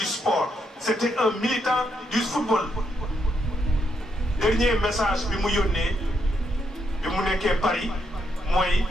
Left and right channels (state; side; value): normal; both; correlation 0.78